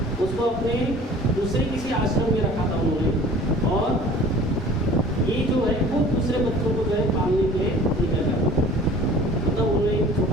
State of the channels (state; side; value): normal; both; correlation 0.47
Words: उसको अपने दूसरे किसी आश्रम में रखा था उन्होंने, और ये जो है खुद दूसरे बच्चों को जो है पालने के लिए निकल जाता था। मतलब उन्होंने एक